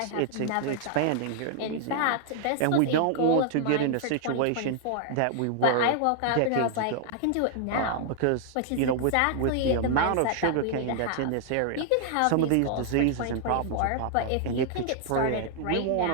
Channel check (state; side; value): different; both; correlation -0.01